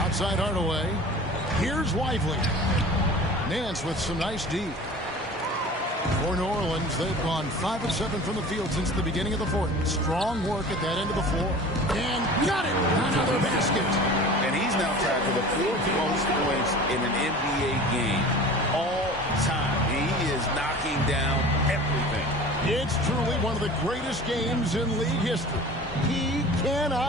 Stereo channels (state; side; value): normal; both; correlation 0.40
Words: Hardaway. Here's Lively. Nance with some nice D. For New Orleans, they've gone 5 of 7 from the field since the beginning of the 4th. Strong work at that end of the floor. And got it! Another basket. And he's now tied for the 4th most points in an NBA game all time. He is knocking down everything. It's truly one of the greatest games in league history. He